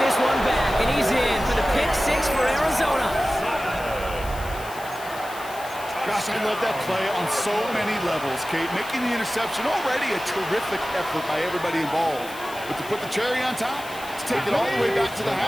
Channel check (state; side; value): noise; left; hiss, 16 dB below the sound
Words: one back, and he's in for the pick 6 for Arizona. Gosh, I love that play on so many levels, Kate. Making the interception, already a terrific effort by everybody involved. But to put the cherry on top, to take it all the way back to the